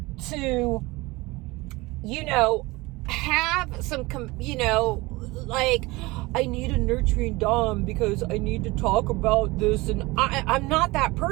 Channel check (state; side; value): quieter; left; 22.1 dB